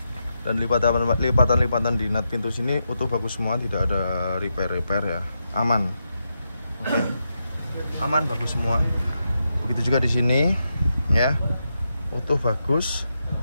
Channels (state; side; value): inverted; both; correlation -0.85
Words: Dan lipatan-lipatan di nut pintu sini utuh bagus semua, tidak ada repair ya, aman. Oke, aman, bagus semua. Begitu juga di sini ya, utuh bagus.